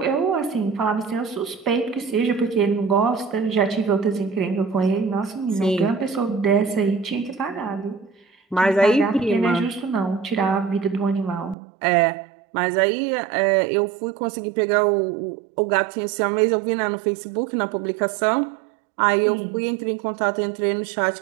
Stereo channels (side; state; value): left; drops out; at 11.6 s